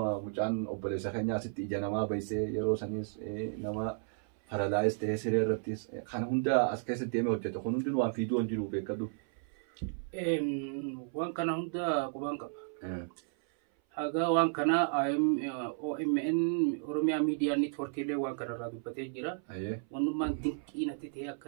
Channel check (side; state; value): left; silent; 56 dB below the other